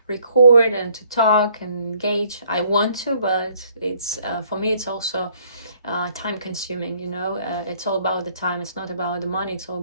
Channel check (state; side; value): inverted; both; correlation -0.63